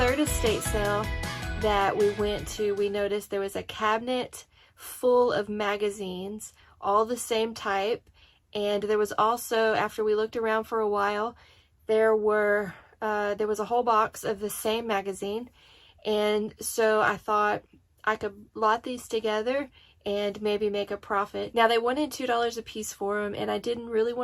estate sale that we went to, we noticed there was a cabinet full of magazines, all the same type, and there was also, after we looked around for a while, there was a whole box of the same magazine, and so I thought I could lot these together and maybe make a profit. Now they wanted $2 a piece for them, and I didn't really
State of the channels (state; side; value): identical; both; correlation 1.00